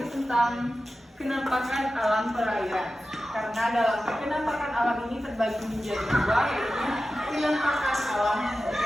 tentang kenampakan alam perairan. Karena dalam kenampakan alam ini terbagi menjadi dua, yaitu kenampakan alam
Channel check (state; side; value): normal; both; correlation 0.93